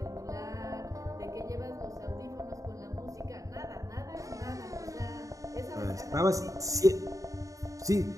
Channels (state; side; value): late; left; 0.16 ms